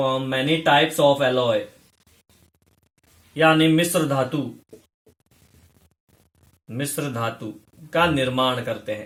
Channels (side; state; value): both; identical; correlation 1.00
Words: many types of alloy, यानी मिश्र धातु का निर्माण करते